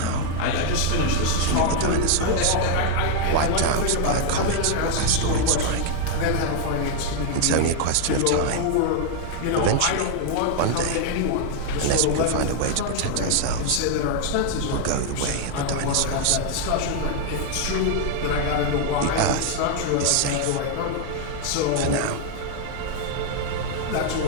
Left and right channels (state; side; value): different; both; correlation 0.00